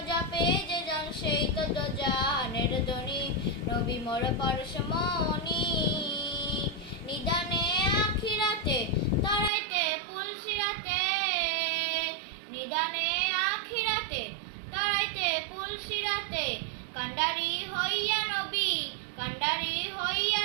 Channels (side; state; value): left; drops out; at 9.5 s